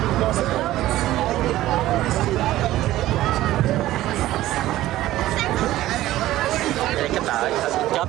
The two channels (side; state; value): left; quieter; 15.2 dB